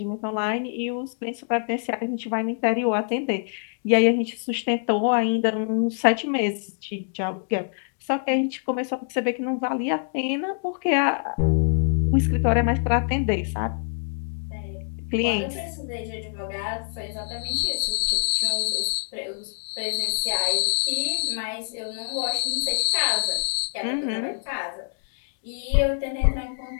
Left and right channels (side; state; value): right; silent; digital silence